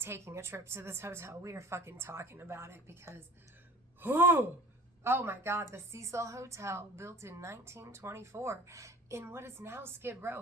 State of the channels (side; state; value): both; normal; correlation 0.43